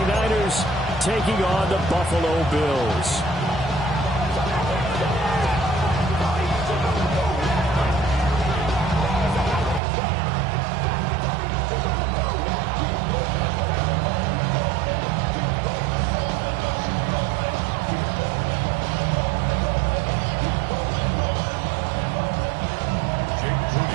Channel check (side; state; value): left; drops out; at 9.8 s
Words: taking on the Buffalo Bills.